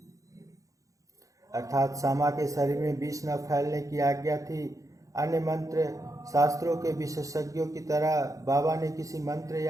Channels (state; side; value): late; left; 0.16 ms